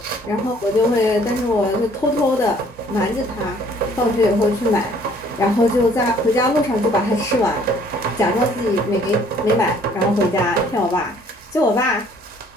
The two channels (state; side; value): normal; both; correlation 0.58